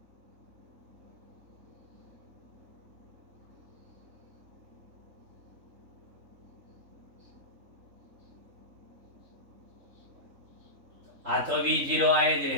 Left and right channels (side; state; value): left; late; 3.6 ms